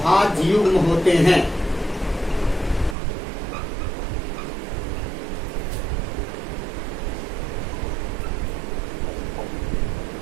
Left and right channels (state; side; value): drops out; left; at 3.0 s